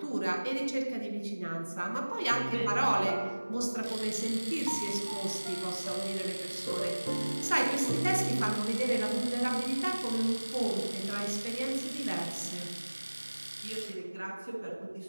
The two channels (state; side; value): inverted; both; correlation -1.00